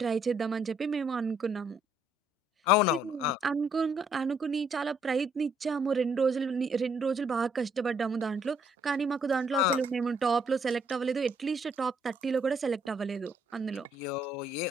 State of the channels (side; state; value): both; normal; correlation 0.68